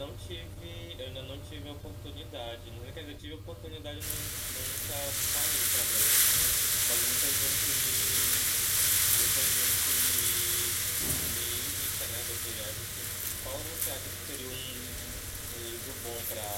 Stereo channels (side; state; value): both; identical; correlation 1.00